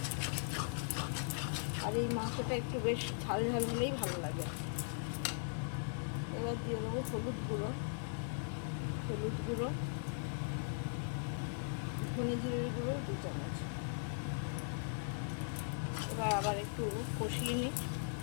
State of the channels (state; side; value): silent; right; digital silence